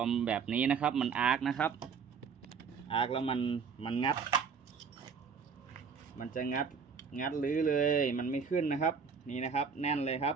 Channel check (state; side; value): quieter; left; 5.9 dB